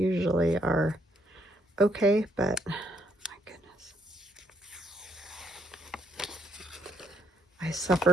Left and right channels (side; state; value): both; normal; correlation 0.72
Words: are okay, but my goodness. I